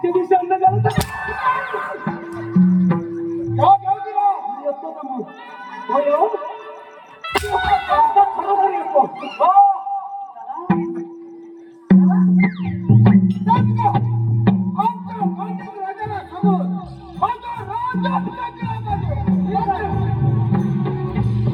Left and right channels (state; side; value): identical; both; correlation 1.00